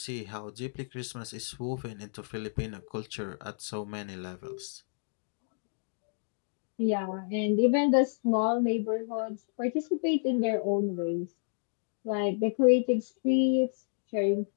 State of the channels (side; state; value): right; silent; digital silence